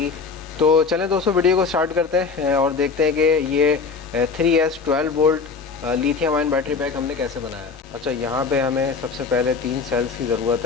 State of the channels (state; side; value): quieter; right; 5.0 dB